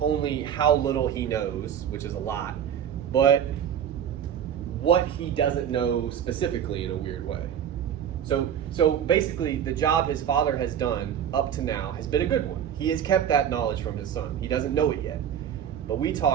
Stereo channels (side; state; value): left; quieter; 9.1 dB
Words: how little he knows, which is a lot, but what he doesn't know specifically in a weird way. So basically, the job his father has done up to now has been a good one. He has kept that knowledge from his son. He doesn't know it yet. But when we